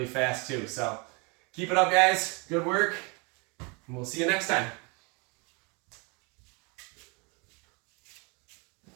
fast too. So keep it up, guys. Good work, and we'll see you next time.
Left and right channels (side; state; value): left; quieter; 31.1 dB